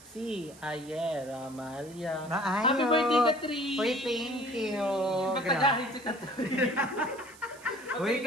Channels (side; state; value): right; noise; hiss, 22 dB below the sound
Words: si Aye Ramalia. Happy birthday, Katrin! Uy, thank you! Magpatagahin si Katrin. Uy,